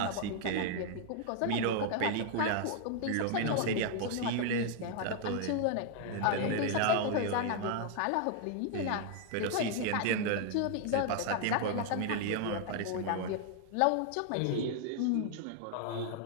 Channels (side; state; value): both; different; correlation 0.00